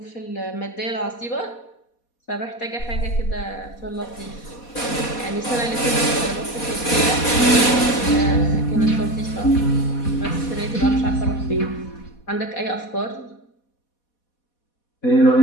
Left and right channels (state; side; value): late; right; 4.2 ms